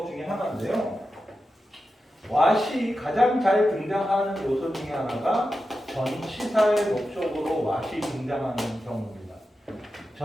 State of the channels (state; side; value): normal; both; correlation 0.91